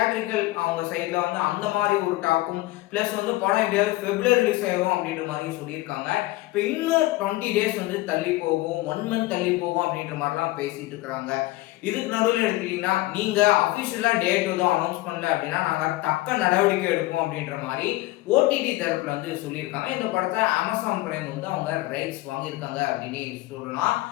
அவங்க சைட்ல வந்து அந்த மாதிரி ஒரு டாக்கும் பிளஸ் வந்து படம் எப்படியாவது பிப்ரவரி ரிலீஸ் ஆயிரும் அப்படின்ற மாதிரி சொல்லியிருக்காங்க. இப்போ இன்னும் 20 டேஸ் வந்து தள்ளி போகும், 1 மந்த் தள்ளி போகும் அப்படின்ற மாதிரிலாம் பேசிட்டு இருக்கிறாங்க. இதுக்கு நடுவில் எடுத்துக்கிட்டீங்கன்னா நீங்க அபிஷியலா டேட் எதுவும் அனௌன்ஸ் பண்ணல அப்படின்னா நாங்க தக்க நடவடிக்கை எடுப்போம் அப்படின்ற மாதிரி ஓடிடி தரப்புல வந்து சொல்லியிருக்காங்க. இந்த படத்தை அமேசான் பிரைம் வந்து அவங்க ரைட்ஸ் வாங்கியிருக்காங்க அப்படின்னு சொல்லலாம்.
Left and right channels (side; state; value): right; quieter; 18.7 dB